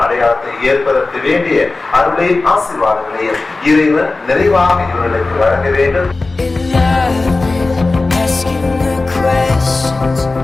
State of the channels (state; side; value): quieter; right; 3.4 dB